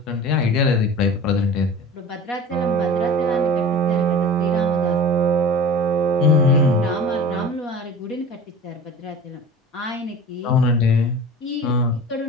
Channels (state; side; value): normal; both; correlation 0.37